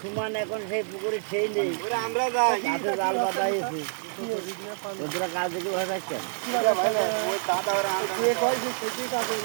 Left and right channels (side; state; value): left; silent; digital silence